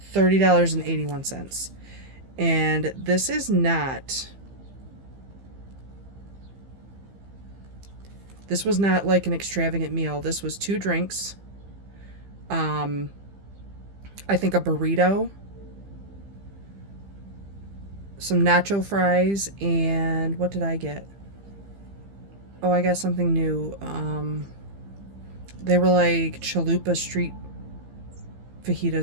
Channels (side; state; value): left; late; 15 ms